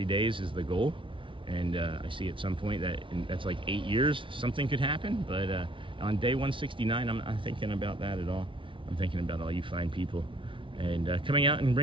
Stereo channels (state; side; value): late; left; 0.25 ms